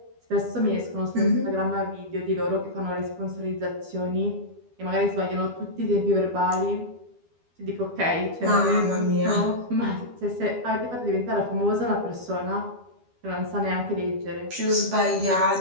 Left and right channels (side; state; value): left; late; 12 ms